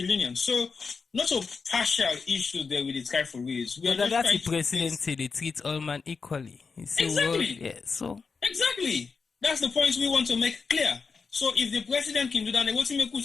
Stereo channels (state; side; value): quieter; right; 5.0 dB